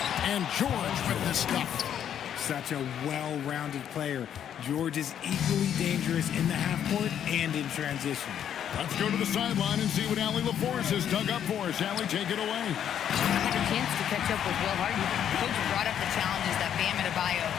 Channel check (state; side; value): quieter; right; 9.5 dB